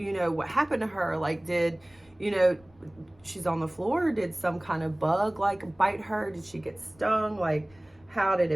know, what happened to her. Like, you know, she's on the floor. Did some kind of bug like bite her? Did she get stung? Like, how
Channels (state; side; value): noise; left; rumble, 30 dB below the sound